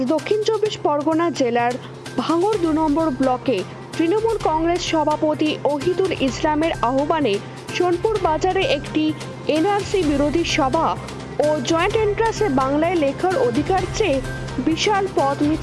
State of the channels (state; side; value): identical; both; correlation 1.00